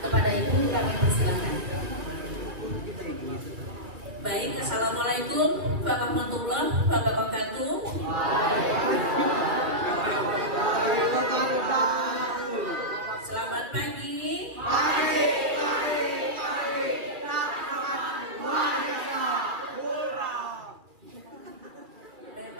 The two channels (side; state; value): left; late; 2.5 ms